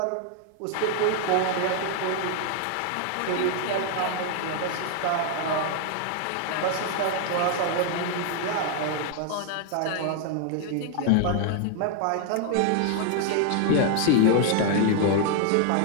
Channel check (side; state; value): both; different; correlation 0.00